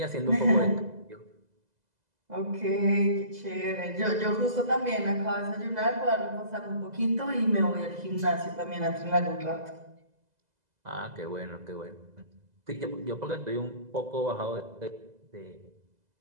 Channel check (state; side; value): late; left; 2.0 ms